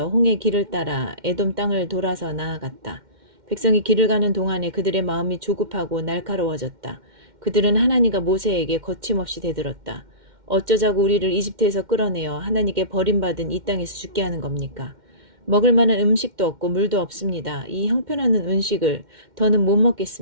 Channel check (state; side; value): late; left; 2.1 ms